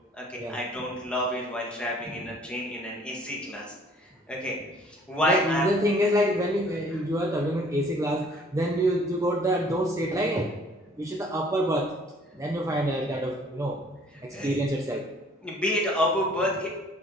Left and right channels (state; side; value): normal; both; correlation 0.56